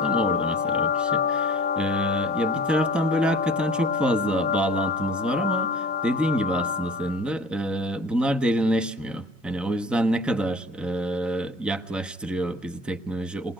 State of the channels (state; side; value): normal; both; correlation 0.45